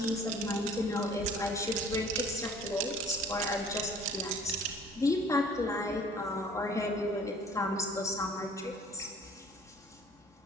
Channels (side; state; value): both; normal; correlation 0.52